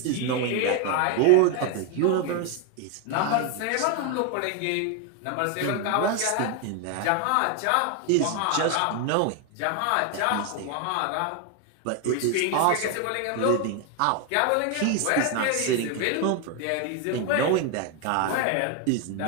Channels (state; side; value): different; both; correlation 0.01